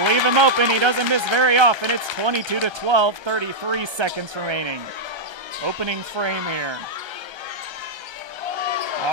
leave him open, he doesn't miss very often. It's 22-12, 33 seconds remaining. Opening frame here.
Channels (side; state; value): left; late; 1.3 ms